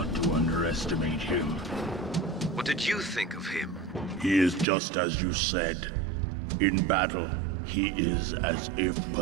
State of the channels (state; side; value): drops out; left; at 4.7 s